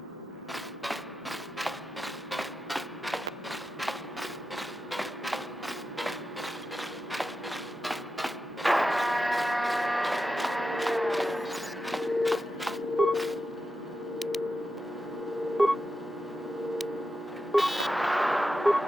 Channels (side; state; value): both; normal; correlation 0.90